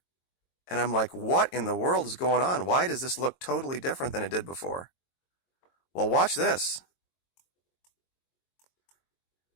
And I'm like, what in the world is going on? Why does this look totally different than it did before? Well, watch this.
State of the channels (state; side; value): late; right; 22 ms